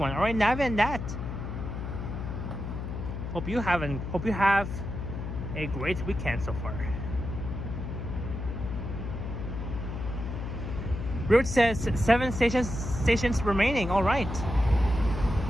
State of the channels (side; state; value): left; noise; hum, 5 dB below the sound